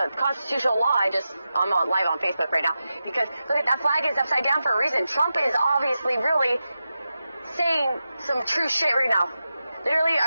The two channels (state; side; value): inverted; both; correlation -0.91